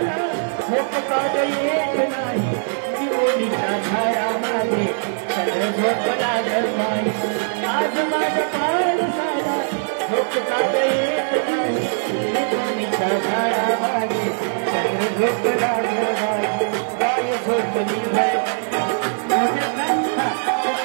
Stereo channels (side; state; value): left; silent; digital silence